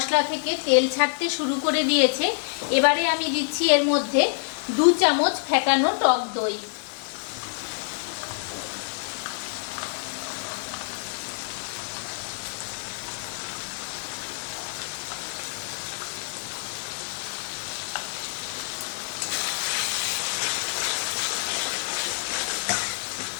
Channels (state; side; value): silent; right; digital silence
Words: থেকে তেল ছাড়তে শুরু করে দিয়েছে। এবারে আমি দিচ্ছি এর মধ্যে 2 চামচ ফেটানো টক দই।